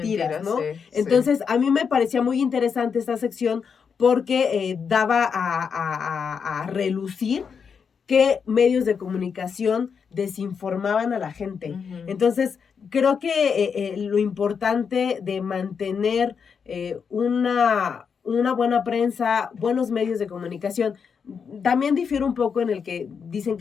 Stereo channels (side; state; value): right; quieter; 6.3 dB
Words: ¿no? Entonces, a mí me parecía muy interesante esta sección porque daba a relucir qué medios de comunicación desinformaban a la gente. Entonces, creo que lo importante de mantener una buena prensa, buenos medios de comunicación, también difiere un poco en el que dicen